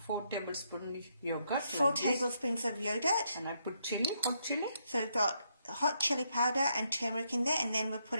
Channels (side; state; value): both; inverted; correlation -0.76